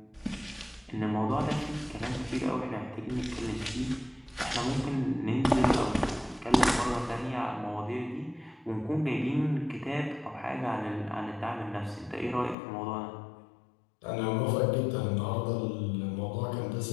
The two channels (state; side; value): drops out; right; at 12.6 s